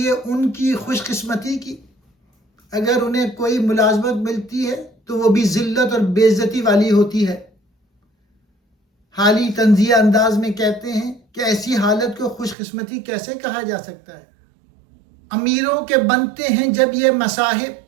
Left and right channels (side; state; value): left; drops out; at 12.6 s